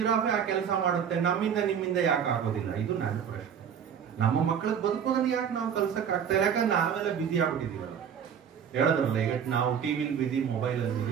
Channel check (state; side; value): quieter; left; 7.9 dB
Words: ಆ ಕೆಲಸ ಮಾಡುತ್ತೆ, ನಿಮ್ಮಿಂದ ಯಾಕೆ ಆಗೋದಿಲ್ಲ? ಇದು ನನ್ನ ಪ್ರಶ್ನೆ. ನಮ್ಮ ಮಕ್ಕಳಿಗೆ ಬದುಕೋದನ್ನ ಯಾಕೆ ನಾವು ಕಲ್ಸಕ್ ಆಗ್ತಾ ಇಲ್ಲ? ಯಾಕಂದ್ರೆ ನಾವೆಲ್ಲ ಬಿಸಿ ಆಗ್ಬಿಟ್ಟಿದೀವಲ್ಲ. ಹೇಳದ್ರಲ್ಲ, ಈಗ ನಾವು ಟಿವಿಲಿ ಬಿಸಿ, ಮೊಬೈಲ್ ಅಲ್ಲಿ